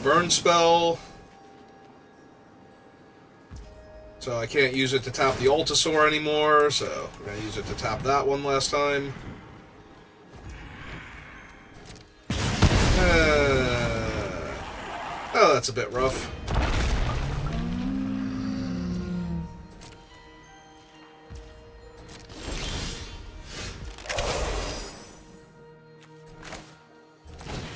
burn spell. So I can't use it to tap the Altasaur anymore, so we're going to use it to tap that one last time. Oh, that's a bit rough.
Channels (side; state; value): both; identical; correlation 1.00